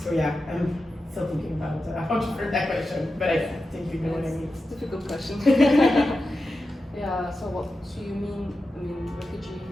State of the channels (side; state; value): both; normal; correlation 0.91